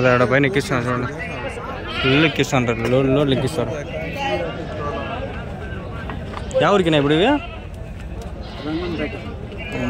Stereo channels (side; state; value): both; identical; correlation 1.00